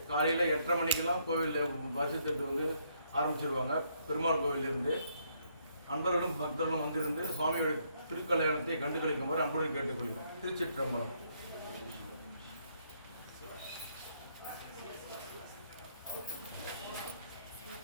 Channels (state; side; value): inverted; both; correlation -0.72